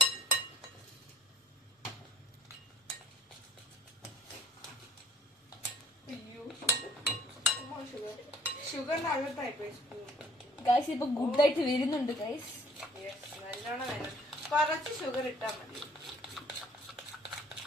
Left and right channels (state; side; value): normal; both; correlation 0.56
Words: അയ്യോ, ഷുഗറിന്റെ അകത്തായിപ്പോയി സ്പൂൺ. ഗൈസ്, ഇപ്പൊ ഗുഡായിട്ട് വരുന്നുണ്ട് ഗൈസ്. നല്ലോണം വേണം. കുറച്ച് ഷുഗർ ഇട്ടാ മതി.